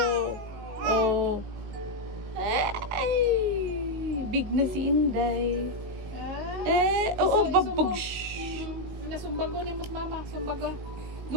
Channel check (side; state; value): left; late; 19 ms